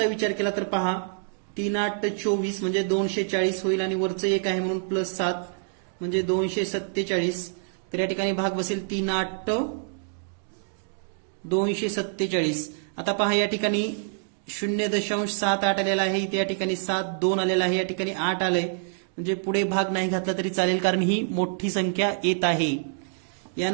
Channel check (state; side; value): silent; left; digital silence